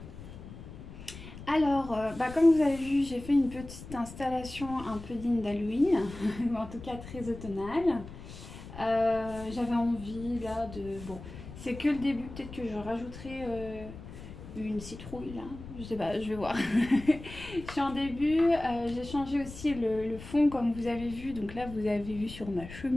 Alors, comme vous avez vu, j'ai fait une petite installation un peu digne d'Halloween, ou en tout cas très automnale. J'avais envie là de... Bon, c'est que le début, peut-être que je rajouterai une citrouille là, je sais pas, je vais voir. Je suis en début, j'ai changé aussi le fond comme vous avez vu, donc là vous avez vu sur ma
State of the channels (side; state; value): left; noise; rumble, 14 dB below the sound